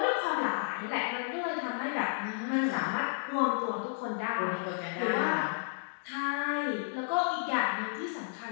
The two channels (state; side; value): silent; right; digital silence